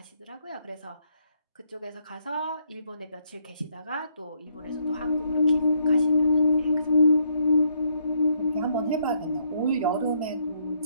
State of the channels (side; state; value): both; inverted; correlation -0.72